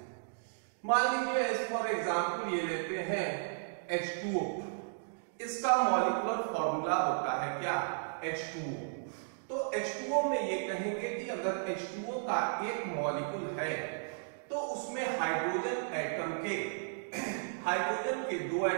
मान लीजिए एज फॉर एग्जांपल ये लेते हैं H2O। इसका मॉलिक्यूलर फॉर्मूला होता है क्या, H2O। तो H2O में ये कहेंगे कि अगर H2O का एक मॉलिक्यूल है तो उसमें हाइड्रोजन के 2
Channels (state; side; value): silent; left; digital silence